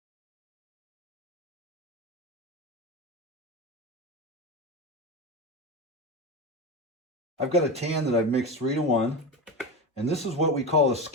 I've got a tan that I've mixed 3-to-1, and this is what we call a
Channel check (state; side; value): normal; both; correlation 0.21